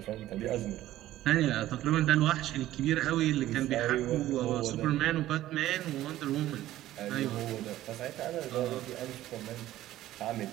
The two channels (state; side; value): quieter; left; 14.3 dB